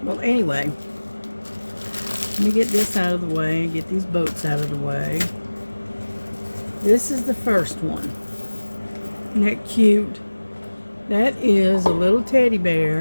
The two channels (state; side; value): inverted; both; correlation -1.00